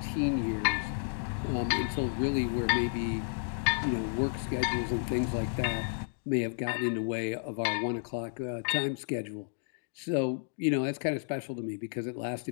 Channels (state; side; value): silent; right; digital silence